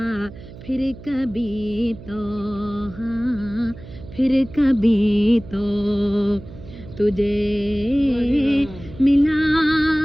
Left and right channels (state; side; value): noise; right; hum, 16 dB below the sound